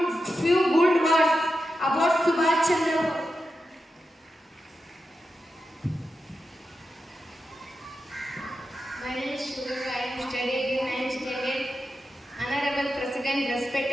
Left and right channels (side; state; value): both; normal; correlation 0.90